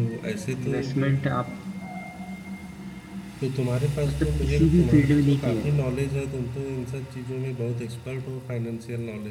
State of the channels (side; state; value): both; identical; correlation 1.00